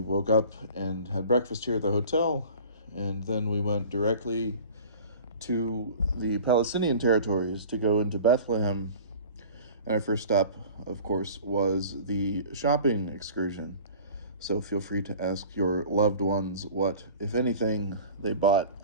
up and had breakfast here at the hotel, and then we went directly to the Palestinian territories to go into Bethlehem. And our first stop, of course, was the shopping excursion. So feel free to ask your loved ones what, if anything, they bought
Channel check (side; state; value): both; inverted; correlation -0.42